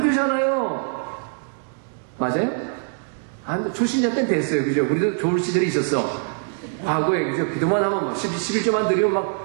되잖아요. 맞아요? 초신자 때는 됐어요. 그죠? 우리도 좋을 시절이 있었어. 과거에, 그죠? 기도만 하면 막 11조만 드리면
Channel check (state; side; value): silent; left; 59 dB below the other